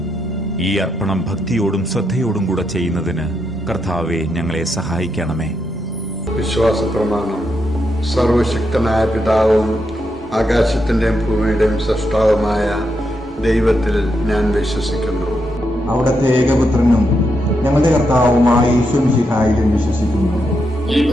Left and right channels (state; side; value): normal; both; correlation 0.82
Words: ഈ അർപ്പണം ഭക്തിയോടും ശ്രദ്ധയോടും കൂടെ ചെയ്യുന്നതിന് കർത്താവെ ഞങ്ങളെ സഹായിക്കണമേ. വിശ്വാസ പ്രമാണം. സർവശക്തനായ പിതാവും ആകാശത്തിന്റെയും ഭൂമിയുടെയും സൃഷ്ടാവുമായ ദൈവത്തിൽ ഞാൻ വിശ്വസിക്കുന്നു. അവിടുത്തെ ഏകപുത്രനും ഞങ്ങളുടെ കർത്താവുമായ യേശുമിശിഹായിലും വിശ്വസിക്കുന്നു. ഈ